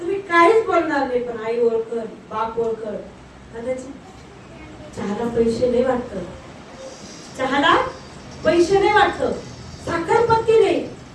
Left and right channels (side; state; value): both; identical; correlation 1.00